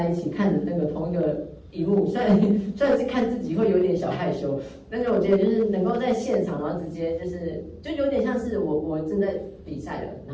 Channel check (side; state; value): both; identical; correlation 1.00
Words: 一起看着那个同一个荧幕，虽然是看自己会有点小害羞，但是我觉得就是能够在现场，然后直接就有点像是我正在比赛了，然